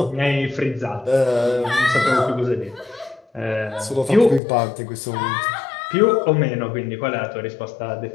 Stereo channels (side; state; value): right; drops out; at 4.4 s